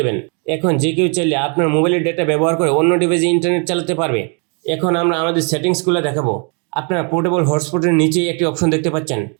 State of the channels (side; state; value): left; quieter; 37.4 dB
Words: দেবেন। এখন যে কেউ চাইলে আপনার মোবাইলের ডেটা ব্যবহার করে অন্য ডিভাইসে ইন্টারনেট চালাতে পারবে। এখন আমরা আমাদের সেটিংসগুলো দেখাবো। আপনারা পোর্টেবল হটস্পটের নিচেই একটি অপশন দেখতে পাচ্ছেন,